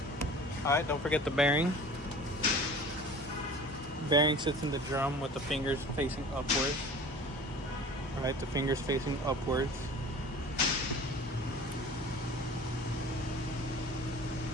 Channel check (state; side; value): normal; both; correlation 0.42